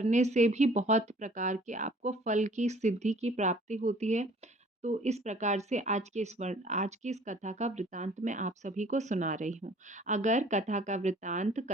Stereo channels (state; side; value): normal; both; correlation 0.54